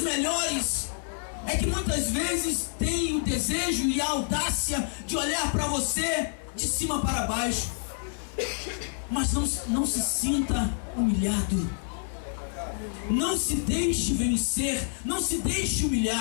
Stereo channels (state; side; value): silent; right; 59 dB below the other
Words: melhores é que muitas vezes tem o desejo e a audácia de olhar para você de cima para baixo. Mas não se sinta humilhado. Não se deixe vencer. Não se deixe